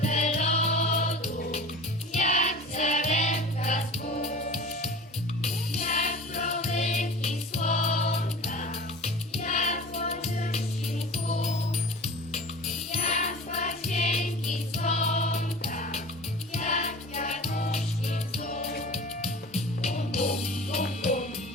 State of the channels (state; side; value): normal; both; correlation 0.38